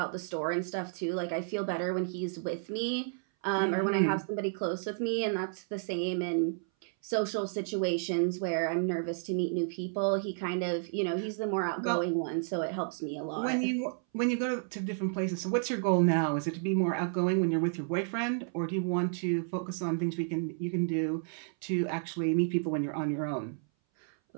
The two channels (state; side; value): silent; left; 57 dB below the other